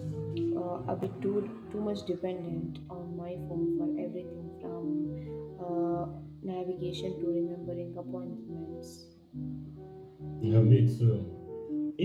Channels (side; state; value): both; identical; correlation 1.00